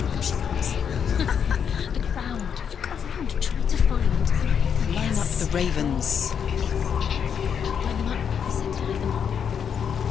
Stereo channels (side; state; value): right; quieter; 7.6 dB